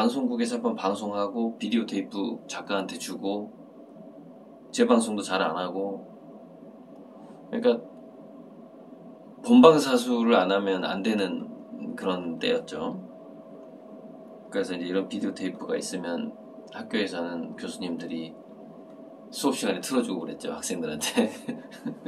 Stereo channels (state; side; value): identical; both; correlation 1.00